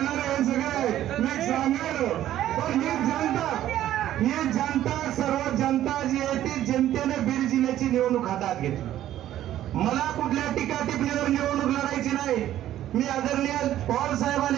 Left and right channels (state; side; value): quieter; left; 12.6 dB